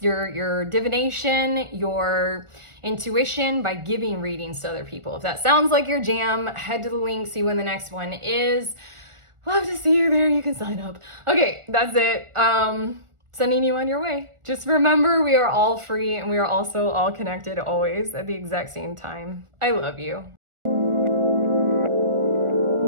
your divination, your intuition by giving readings to other people. If that sounds like your jam, head to the link, see when the next one is. Love to see you there. You can sign up. Okay, that's it. Sending you on your way. Just remember, we are all free and we are also all connected always at the exact same time. I love you.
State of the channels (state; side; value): late; left; 1.4 ms